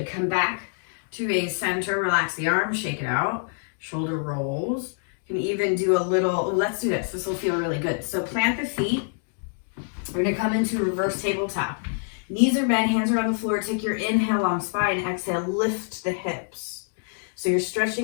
come back to a center. Relax the arms, shake it out. Shoulder rolls. You can even do a little, let's do this. This will feel really good. So plant the feet. We're gonna come into reverse tabletop. Knees are bent, hands are on the floor. Take your inhale, long spine. Exhale, lift the hips. So you're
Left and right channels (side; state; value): right; silent; digital silence